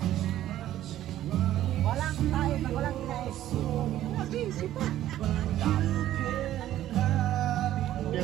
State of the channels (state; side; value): quieter; left; 13.0 dB